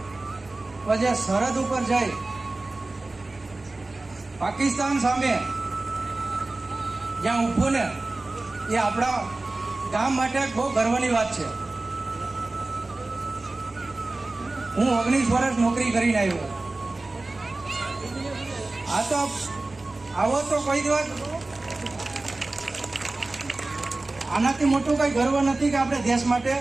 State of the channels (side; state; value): left; quieter; 3.1 dB